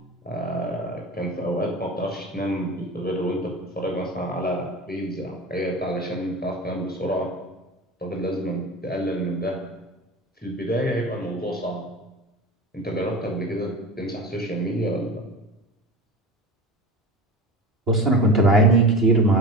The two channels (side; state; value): both; normal; correlation 0.31